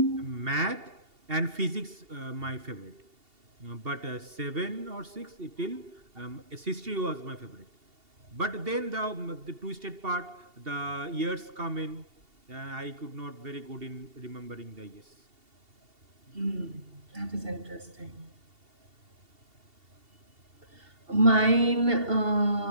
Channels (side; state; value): left; late; 2.7 ms